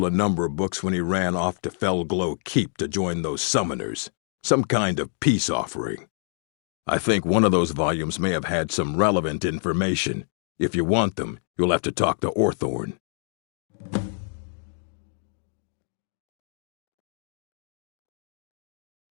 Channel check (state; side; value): silent; right; digital silence